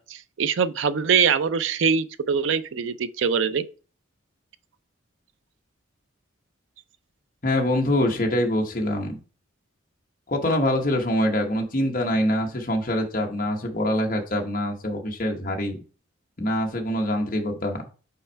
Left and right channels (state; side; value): normal; both; correlation 0.35